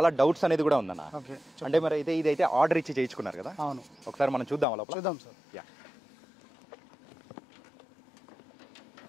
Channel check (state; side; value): drops out; right; at 4.7 s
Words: డౌట్స్ అనేది కూడా ఉందన్న. ఓకే. అంటే మరి అయితే ఇదైతే ఆర్డర్ ఇచ్చి చేయించుకున్నారు కదా? అవును. ఒకసారి మనం చూద్దాం లోపల. చూద్దాం సార్. యా.